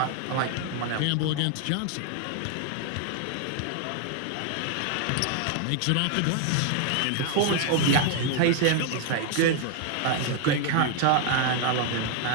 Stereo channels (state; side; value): different; both; correlation 0.00